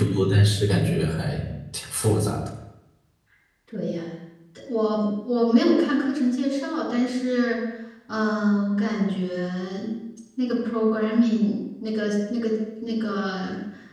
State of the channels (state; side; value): identical; both; correlation 1.00